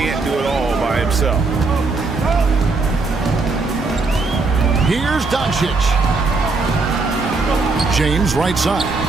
do it all by himself. Here's Doncic. James right side.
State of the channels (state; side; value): quieter; left; 3.8 dB